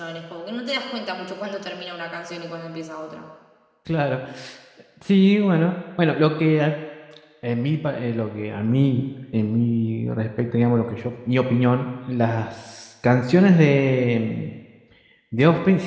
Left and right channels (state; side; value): identical; both; correlation 1.00